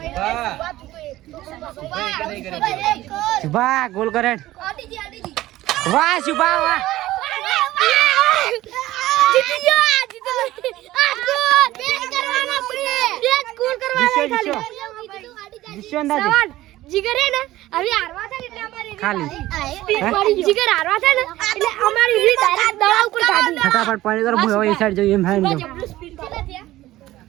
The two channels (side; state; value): left; quieter; 16.0 dB